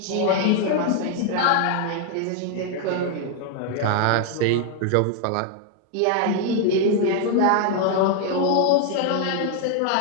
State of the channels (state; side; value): different; both; correlation 0.00